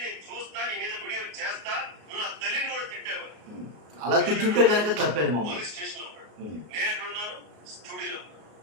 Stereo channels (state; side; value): late; left; 33 ms